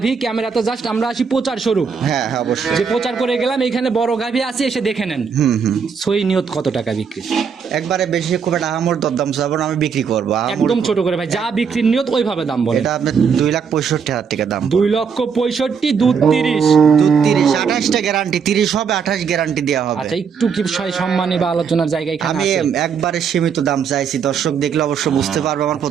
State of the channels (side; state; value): left; quieter; 6.4 dB